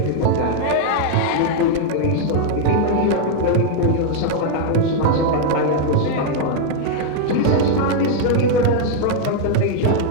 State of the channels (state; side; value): different; both; correlation 0.00